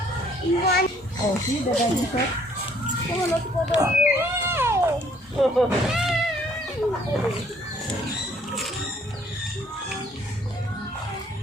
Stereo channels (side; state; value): both; normal; correlation 0.62